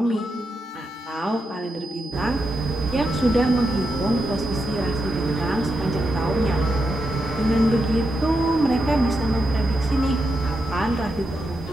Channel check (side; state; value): both; normal; correlation 0.85